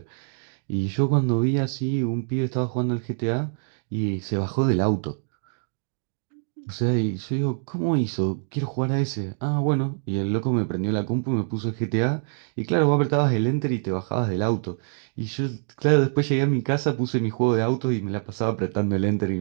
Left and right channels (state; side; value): silent; left; digital silence